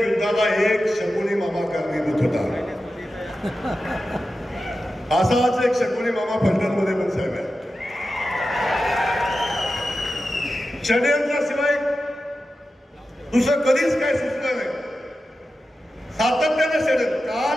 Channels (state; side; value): normal; both; correlation 0.92